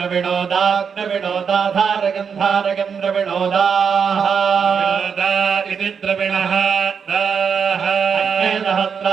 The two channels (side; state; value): left; quieter; 6.5 dB